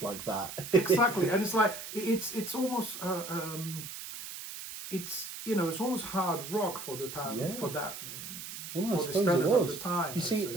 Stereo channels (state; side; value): noise; right; hiss, 10 dB below the sound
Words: like that. Exactly, and it's like it's almost it's almost hard rock for the time for that. Well, I suppose it was. Of the time, you see,